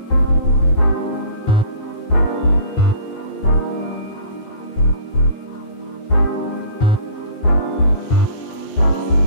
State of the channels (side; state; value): right; late; 9.3 ms